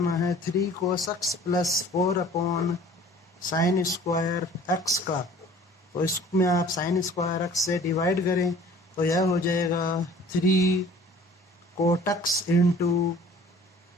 है 3 cos x plus 4 upon sine square x का। तो इसमें आप साइन स्क्वायर एक्स से डिवाइड करें तो यह हो जाएगा 3 cot x into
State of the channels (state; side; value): normal; both; correlation 0.49